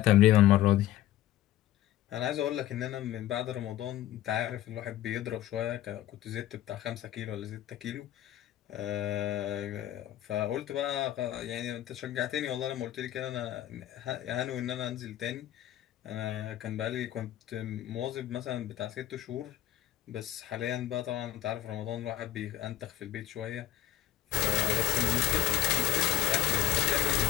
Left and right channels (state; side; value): quieter; right; 13.6 dB